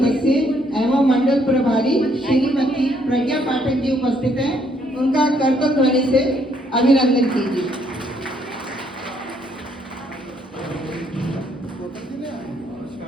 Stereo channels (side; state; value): both; normal; correlation 0.69